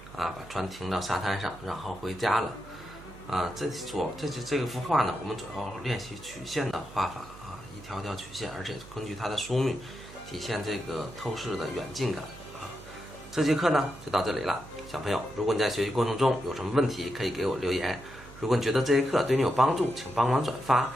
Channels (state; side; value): noise; right; hum, 18 dB below the sound